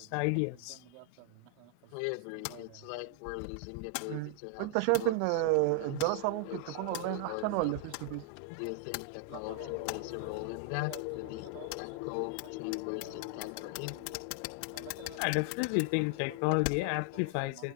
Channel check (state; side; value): different; both; correlation 0.00